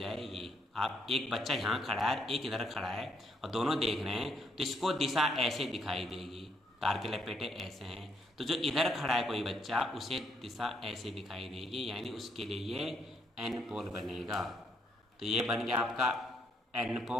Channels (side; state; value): both; normal; correlation 0.72